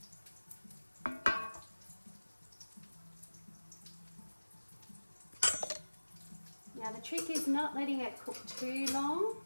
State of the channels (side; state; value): both; inverted; correlation -1.00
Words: Now the trick is not letting it cook too long,